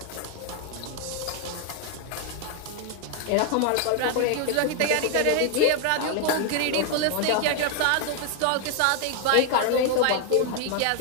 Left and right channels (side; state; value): both; different; correlation 0.00